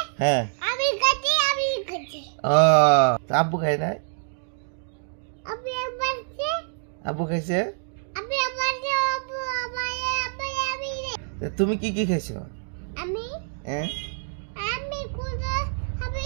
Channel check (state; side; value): silent; left; digital silence